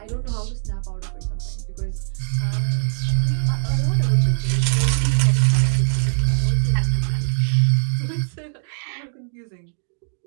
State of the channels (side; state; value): left; silent; digital silence